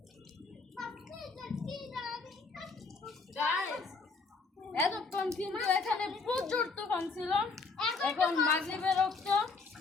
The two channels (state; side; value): quieter; right; 4.2 dB